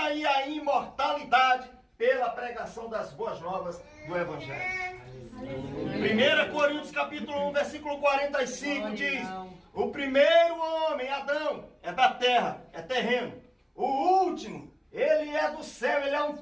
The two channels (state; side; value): identical; both; correlation 1.00